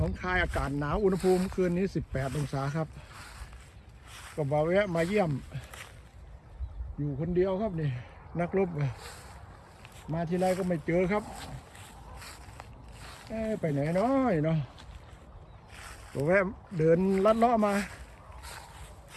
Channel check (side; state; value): both; identical; correlation 1.00